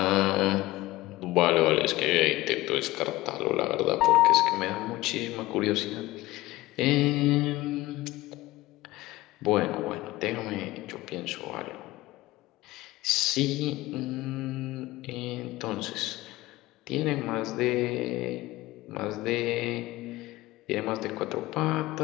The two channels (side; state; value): right; quieter; 18.3 dB